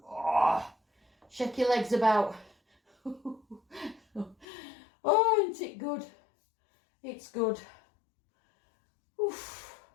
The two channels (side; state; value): right; drops out; at 4.5 s